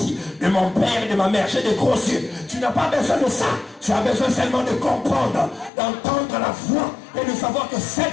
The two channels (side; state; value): right; drops out; at 5.7 s